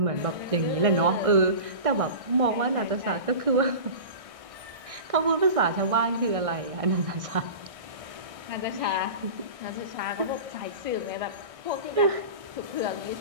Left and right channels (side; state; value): left; late; 1.6 ms